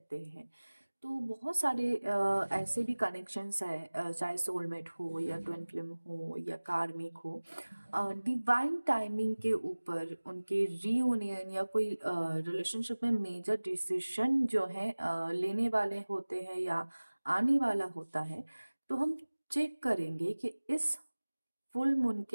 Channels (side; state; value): both; inverted; correlation -1.00